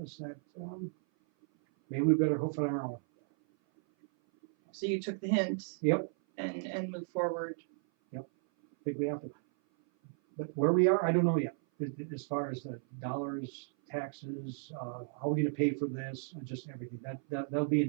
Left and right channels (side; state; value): left; silent; 55 dB below the other